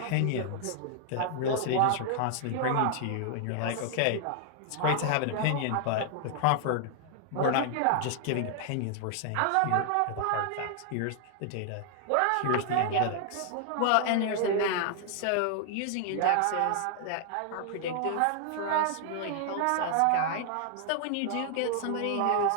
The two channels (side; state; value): both; different; correlation 0.00